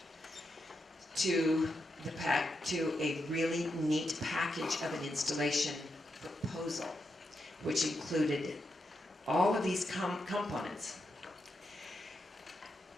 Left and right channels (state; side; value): normal; both; correlation 0.84